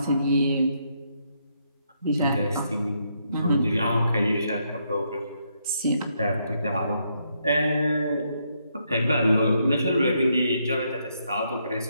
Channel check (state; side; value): inverted; both; correlation -0.76